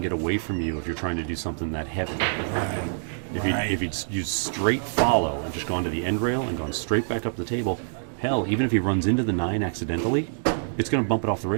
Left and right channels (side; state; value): left; silent; digital silence